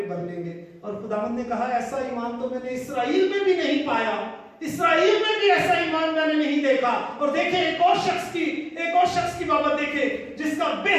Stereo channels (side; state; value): both; identical; correlation 1.00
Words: भर लेंगे। और खुदावंद ने कहा, ऐसा ईमान तो मैंने इस्राएल में भी नहीं पाया, इस्राएल में भी ऐसा ईमान मैंने नहीं देखा। और देखे एक और शख्स की बाबत देखे जिसका